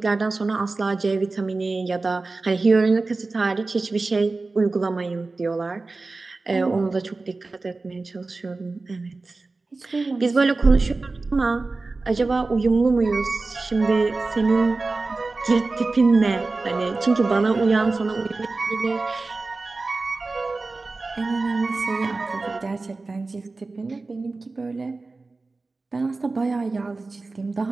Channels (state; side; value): quieter; left; 3.6 dB